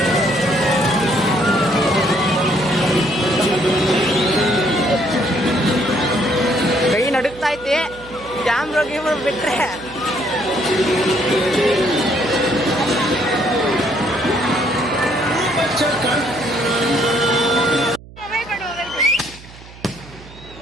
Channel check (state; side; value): noise; right; hum, 19 dB below the sound